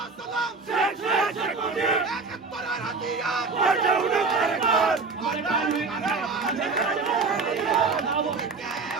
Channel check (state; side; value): quieter; left; 4.2 dB